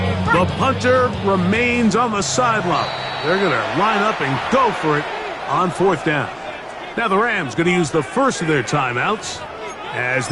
The punter remains on the sideline. They're going to line up and go for it on fourth down. Now the Rams going to use the first of their timeouts as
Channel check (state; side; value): identical; both; correlation 1.00